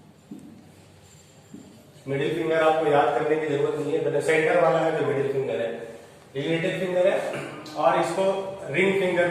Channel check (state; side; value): identical; both; correlation 1.00